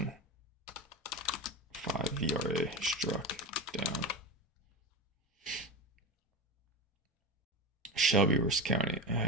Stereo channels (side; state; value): both; normal; correlation 0.23